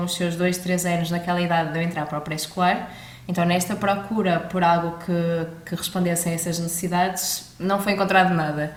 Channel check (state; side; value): identical; both; correlation 1.00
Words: os seus 2, 3 anos naquela idade de eu entrar para o pré-escolar, então nesta procura por algo que respondesse a essas necessidades, não foi encontrado nada.